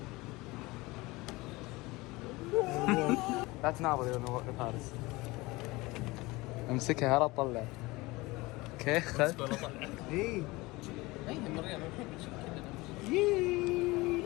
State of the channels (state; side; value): quieter; right; 21.9 dB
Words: لا تناظر يا فارس. امسكها لا تطلع. اوكي خذ. اي المريض ما نحب نشوف كذا.